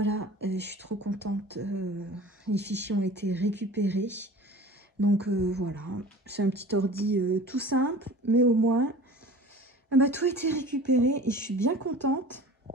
je suis trop contente. Les fichiers ont été récupérés. Donc voilà, c'est un petit ordi tout simple, mais au moins, tout a été récupéré et je suis bien contente.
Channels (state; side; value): normal; both; correlation 0.40